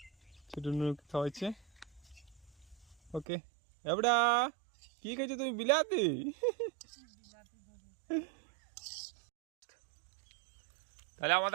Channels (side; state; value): left; drops out; at 3.2 s